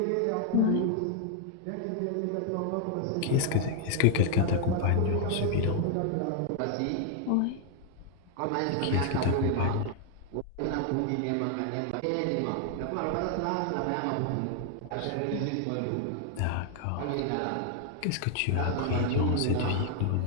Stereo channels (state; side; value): different; both; correlation 0.00